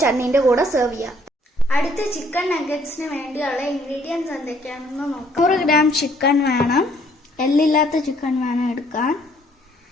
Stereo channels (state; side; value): normal; both; correlation 0.64